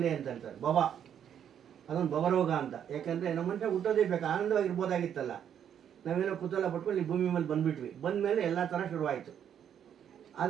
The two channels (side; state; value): left; quieter; 9.1 dB